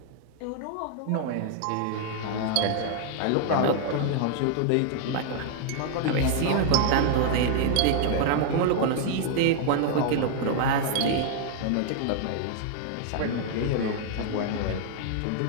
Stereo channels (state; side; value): different; both; correlation 0.00